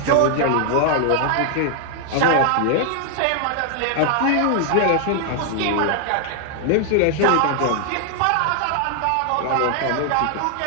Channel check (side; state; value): both; different; correlation 0.00